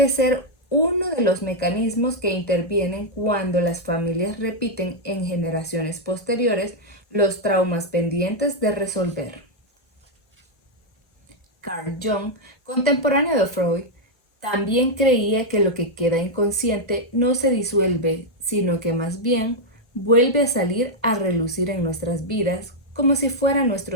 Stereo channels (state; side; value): normal; both; correlation -0.01